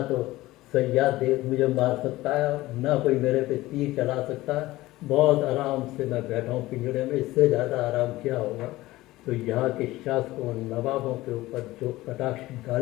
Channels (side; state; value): right; quieter; 17.9 dB